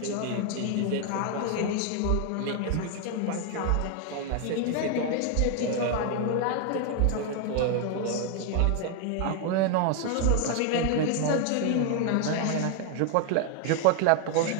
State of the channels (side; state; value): both; different; correlation 0.00